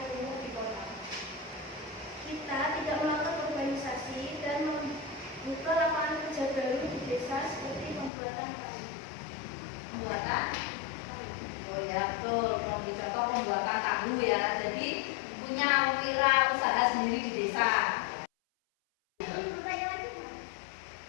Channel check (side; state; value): right; drops out; at 8.1 s